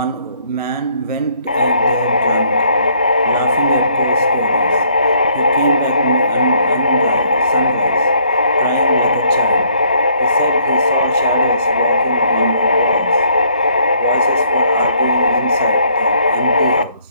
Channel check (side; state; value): both; inverted; correlation -0.66